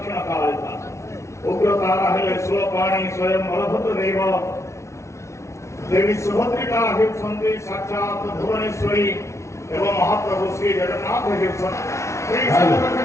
कालिका उग्रतारा हेले स्वपाणी स्वयं बलभद्र देव देवी सुभद्रिका हेउछन्ति साक्षात भुवनेश्वरी एवं महाप्रभु श्री जगन्नाथ हेउछन्ति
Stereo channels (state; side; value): late; right; 0.14 ms